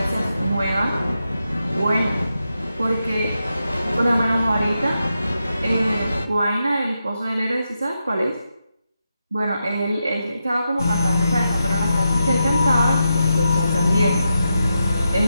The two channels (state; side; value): inverted; both; correlation -0.87